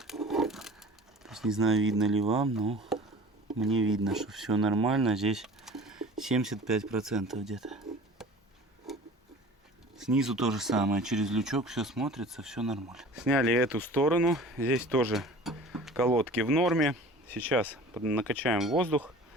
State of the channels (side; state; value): both; normal; correlation 0.43